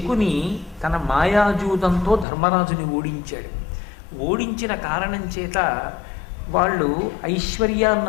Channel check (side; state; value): right; drops out; at 2.2 s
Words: తన మాయాజూదంతో ధర్మరాజుని ఓడించాడు. ఓడించిన కారణం చేత వాళ్ళు